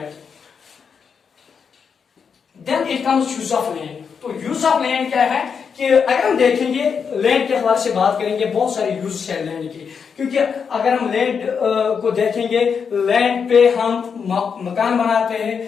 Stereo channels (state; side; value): quieter; right; 6.3 dB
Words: Then it comes use of land. تو use of land کیا ہے کہ اگر ہم دیکھیں گے لینڈ کے حوالے سے بات کریں گے بہت سارے یوز ہے لینڈ کی، کیونکہ اگر ہم لینڈ کو دیکھیں گے لینڈ پہ ہم مکان بناتے ہیں،